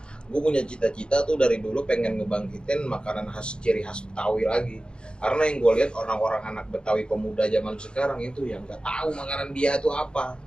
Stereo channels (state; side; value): late; right; 0.051 ms